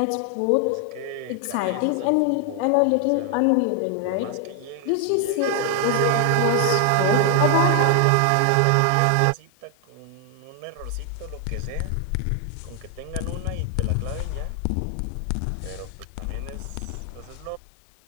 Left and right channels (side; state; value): both; different; correlation 0.00